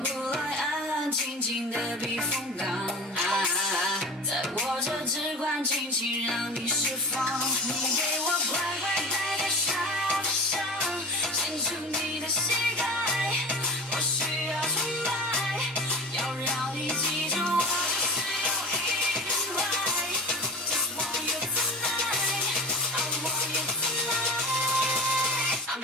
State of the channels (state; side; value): normal; both; correlation 0.33